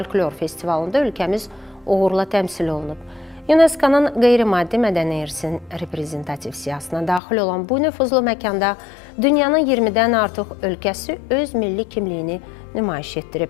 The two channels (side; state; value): right; drops out; at 7.2 s